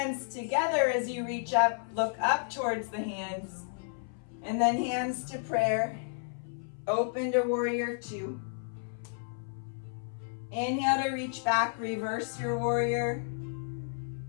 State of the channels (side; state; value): right; silent; 56 dB below the other